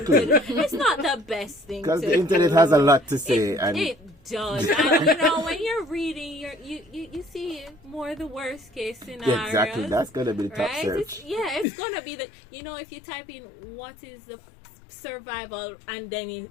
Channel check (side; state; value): right; drops out; at 11.7 s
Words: It's not the best thing. Because the internet has a lot to say. It does. And when you're reading, you see more the worst case scenario. Exactly. That's gonna be the top search. It's gonna be the. if you type in what is the survival, and then it